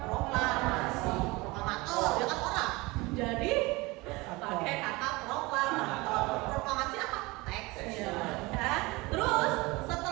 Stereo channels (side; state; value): left; quieter; 23.1 dB